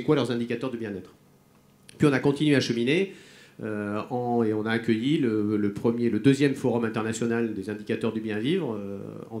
quoi leurs indicateurs de bien-être. Puis on a continué à cheminer et on a accueilli le deuxième forum international des indicateurs du bien-vivre en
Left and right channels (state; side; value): identical; both; correlation 1.00